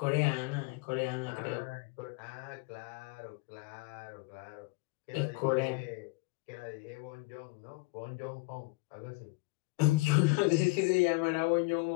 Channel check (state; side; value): quieter; right; 24.9 dB